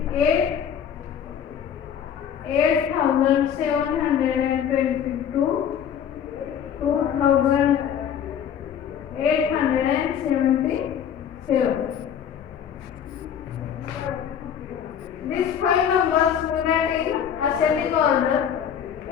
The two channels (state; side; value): quieter; right; 8.6 dB